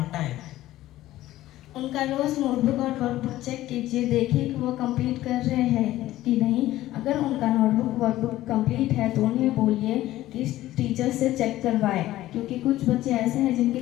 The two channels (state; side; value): quieter; right; 15.2 dB